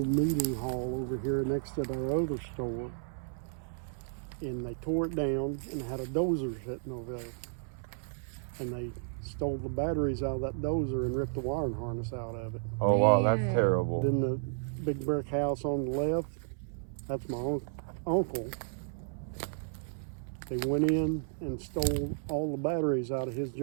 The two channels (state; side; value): silent; left; 56 dB below the other